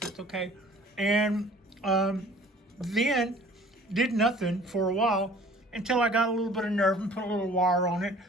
okay. And then did nothing for a while until I got a little bit of nerve and put a little wire on it.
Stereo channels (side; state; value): both; normal; correlation 0.51